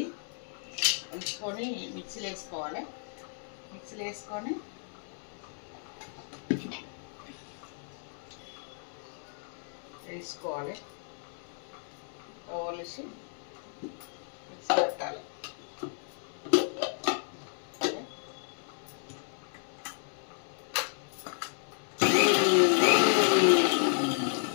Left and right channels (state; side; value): silent; right; 56 dB below the other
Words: ఒలుసుకొని మిక్సీలో వేసుకోవాలి. మిక్సీలో వేసుకొని వేసుకోవాలి. ఒలిసి మిక్సీ పెట్టాలి.